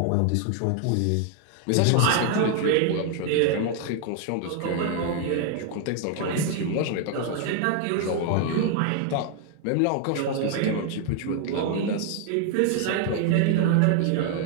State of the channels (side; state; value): both; different; correlation 0.00